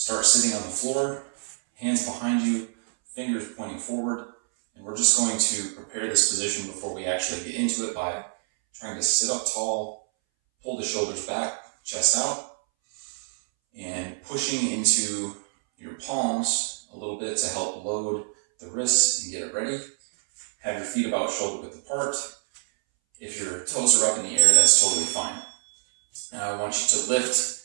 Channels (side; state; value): left; silent; 61 dB below the other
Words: sitting on the floor, hands behind you, fingers pointing forward, and we're just going to prepare this position before we actually get into it by trying to sit up tall, pull the shoulders back, chest out, and pushing into your palms a little bit to help load the wrists and get it ready. Have your feet about shoulder width apart. If your toes are up in the air, that's totally fine. Now I want you to